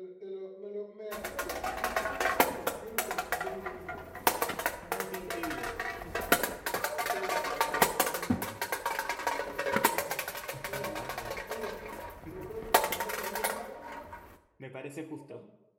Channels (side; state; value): both; identical; correlation 1.00